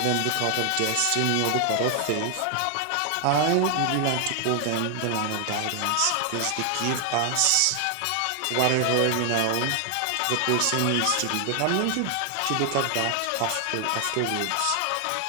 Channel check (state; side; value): different; both; correlation 0.00